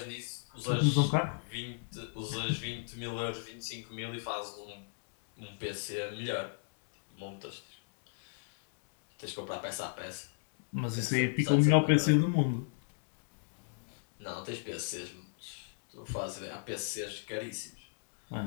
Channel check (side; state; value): right; silent; digital silence